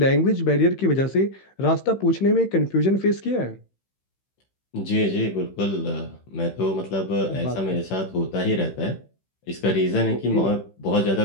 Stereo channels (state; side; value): late; right; 15 ms